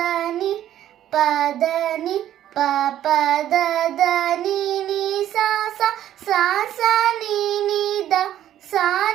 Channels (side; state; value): left; quieter; 11.8 dB